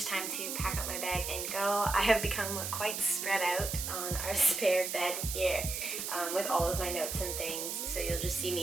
time to pack up my bag and go. I have become quite spread out on our spare bed here with all of my notes and things. So you'll just see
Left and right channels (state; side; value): noise; right; hiss, 4 dB below the sound